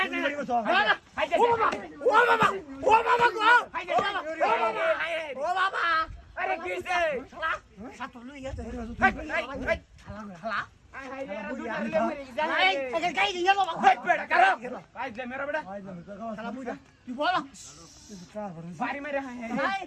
তিন বাড়ি বসু না না হাইতে ও বাবা গো হাইতে ও বাবা আরে কিছে শালা সাত লই গেছে হালা হাই রে দুটা রে মরে এই যায় এই গাই দিয়ে যাবো হাই বেটা কারো পাইলে মেরা বেটা ভাই জানো জাগাস শালা বুইরা তুই বল বাড়ি মেরে হাই ভাই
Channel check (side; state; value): both; identical; correlation 1.00